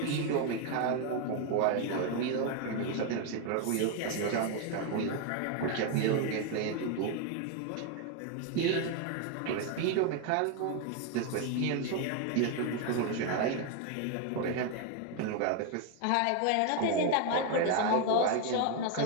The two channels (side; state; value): both; different; correlation 0.01